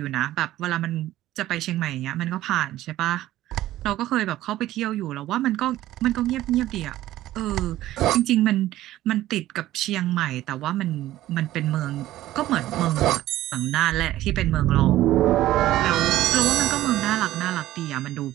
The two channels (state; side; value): quieter; left; 14.7 dB